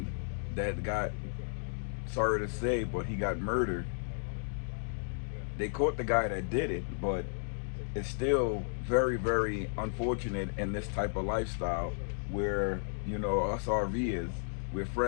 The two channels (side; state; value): right; silent; digital silence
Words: that got, sorry to say, but he got murdered. They caught the guy that did it, but it's still very, very unfortunate in this type of lifestyle where, you know, us RVers, we're